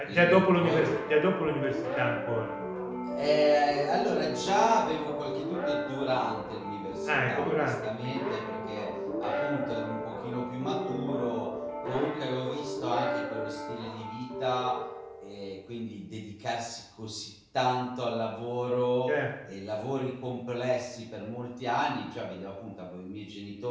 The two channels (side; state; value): both; identical; correlation 1.00